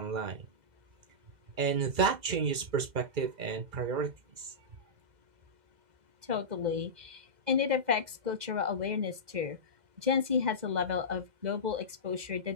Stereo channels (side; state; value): left; late; 2.0 ms